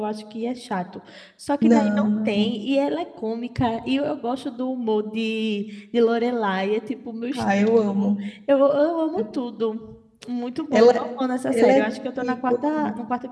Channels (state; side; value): identical; both; correlation 1.00